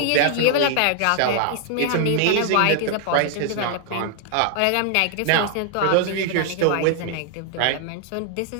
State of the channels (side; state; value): both; different; correlation 0.00